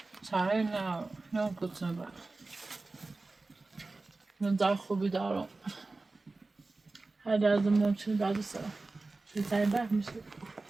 سعی نه کتنه بر من در خوبی دارم هر درد ممکن بعد سرم بهترین بر میشه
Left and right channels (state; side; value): quieter; left; 3.4 dB